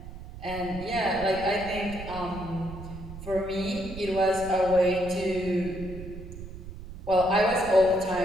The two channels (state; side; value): noise; right; rumble, 12 dB below the sound